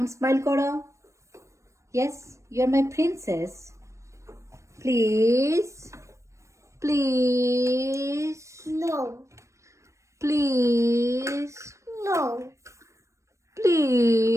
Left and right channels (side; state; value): left; late; 0.15 ms